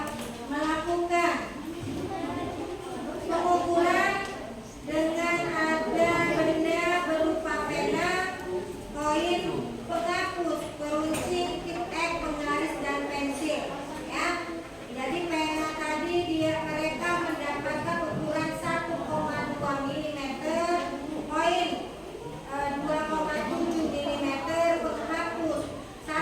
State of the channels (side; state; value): both; identical; correlation 1.00